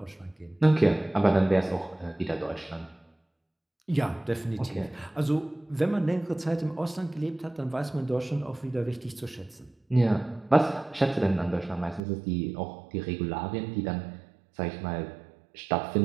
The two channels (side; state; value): left; drops out; at 12.0 s